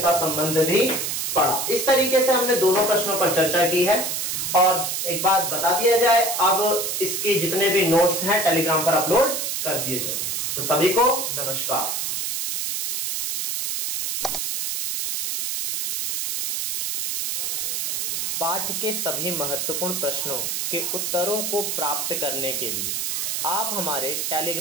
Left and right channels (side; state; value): right; noise; hiss, 1 dB below the sound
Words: संबंध भी पढ़ा। इस तरीके से हमने दोनों प्रश्नों पर चर्चा की है। और एक बात बता दिया जाए, अब इसके जितने भी नोट्स हैं टेलीग्राम पर अपलोड कर दिए जाएंगे। तो सभी को नमस्कार। पाठ के सभी महत्वपूर्ण प्रश्नों के उत्तरों को प्राप्त करने के लिए आप हमारे